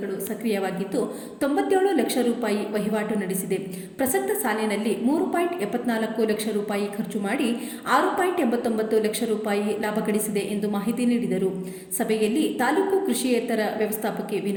ಸಕ್ರಿಯವಾಗಿದ್ದು 97 ಲಕ್ಷ ರೂಪಾಯಿ ವಹಿವಾಟು ನಡೆಸಿದೆ. ಪ್ರಸಕ್ತ ಸಾಲಿನಲ್ಲಿ 3.74 ಲಕ್ಷ ರೂಪಾಯಿ ಖರ್ಚು ಮಾಡಿ 6.89 ಲಕ್ಷ ರೂಪಾಯಿ ಲಾಭ ಗಳಿಸಿದೆ ಎಂದು ಮಾಹಿತಿ ನೀಡಿದರು. ಸಭೆಯಲ್ಲಿ ತಾಲೂಕು ಕೃಷಿಯೇತರ ವ್ಯವಸ್ಥಾಪಕಿ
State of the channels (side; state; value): both; identical; correlation 1.00